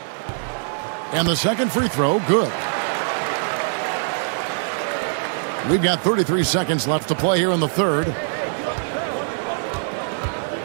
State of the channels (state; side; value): silent; left; 58 dB below the other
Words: And the second free throw, good. We've got 33 seconds left to play here in the third.